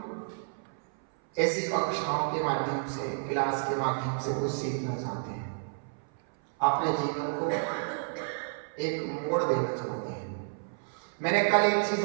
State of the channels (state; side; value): silent; left; 57 dB below the other